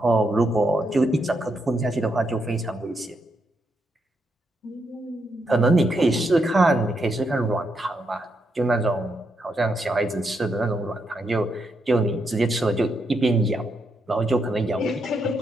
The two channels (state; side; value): normal; both; correlation 0.80